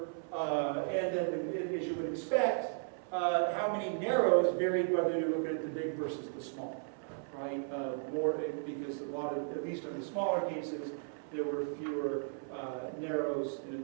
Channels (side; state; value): left; silent; 54 dB below the other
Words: and then, as you would expect, how many narrows varied whether you're looking at the big versus the small, right? More because a lot of, at least in the smaller cases, there were fewer narrows, and in